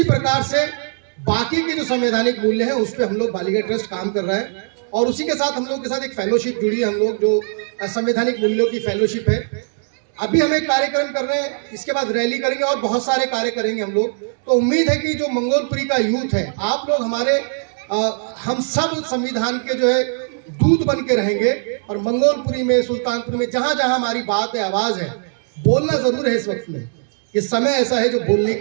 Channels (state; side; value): silent; left; digital silence